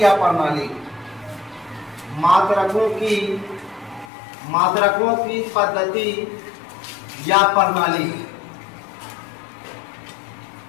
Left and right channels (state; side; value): drops out; right; at 4.1 s